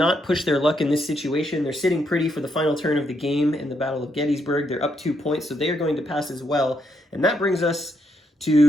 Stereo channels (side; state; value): both; normal; correlation 0.77